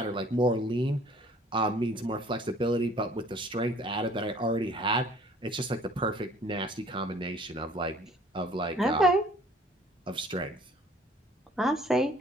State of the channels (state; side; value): normal; both; correlation 0.54